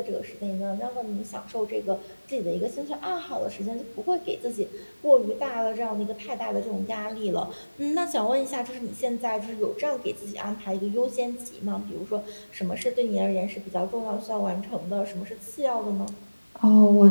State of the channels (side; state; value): both; inverted; correlation -1.00